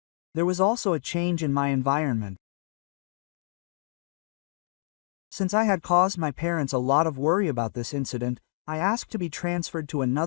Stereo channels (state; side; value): silent; right; digital silence